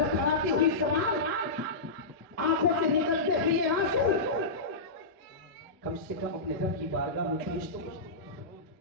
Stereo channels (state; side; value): quieter; right; 3.0 dB